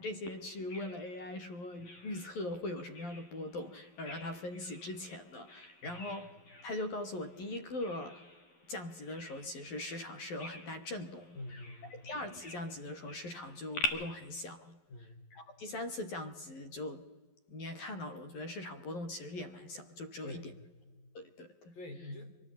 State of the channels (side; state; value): right; late; 11 ms